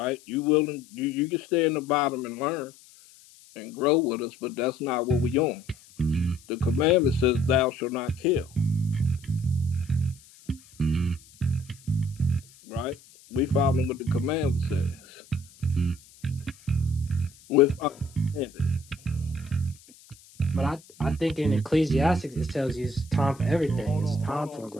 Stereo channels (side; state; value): left; noise; hiss, 25 dB below the sound